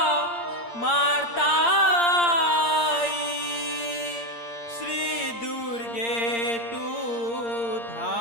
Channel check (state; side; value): late; right; 8.6 ms